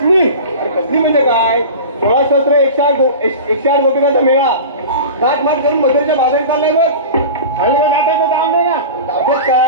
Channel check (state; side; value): inverted; both; correlation -0.33